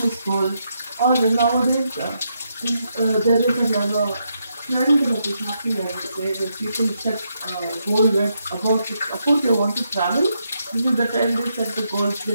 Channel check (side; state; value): both; inverted; correlation -0.80